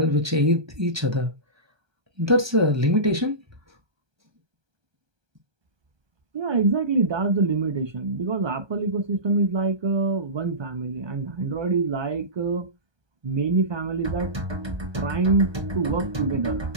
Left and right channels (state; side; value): late; left; 1.2 ms